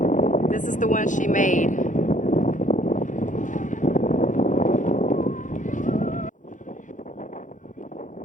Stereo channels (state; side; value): late; right; 0.37 ms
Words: this is the one she made.